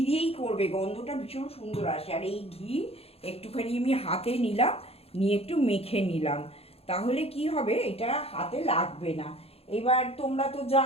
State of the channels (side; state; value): right; late; 0.29 ms